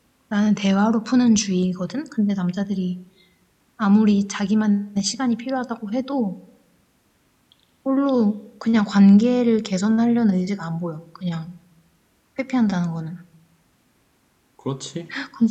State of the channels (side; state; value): both; identical; correlation 1.00